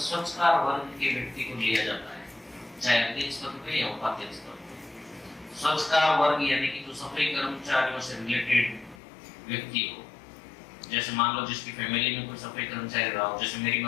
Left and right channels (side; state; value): right; drops out; at 9.0 s